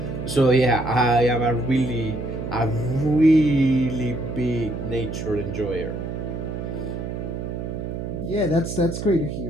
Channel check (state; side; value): noise; right; hum, 5 dB below the sound